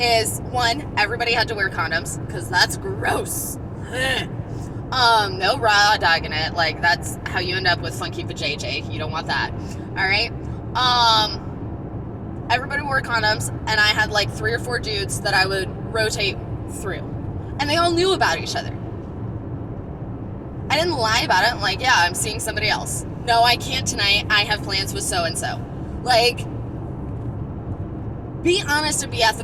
one, everybody had to wear condoms, because that's gross. No raw dog in it. Like, that's how you end up with funky vajayjay. You don't want that. All right? Everybody wore condoms, and I had like 3 or 4 dudes that I would rotate through, and they all knew about each other. I didn't lie about it. Like, yeah, I'm seeing somebody else. No, I can't tonight. I have plans with so-and-so. Like, be honest and be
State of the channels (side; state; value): both; identical; correlation 1.00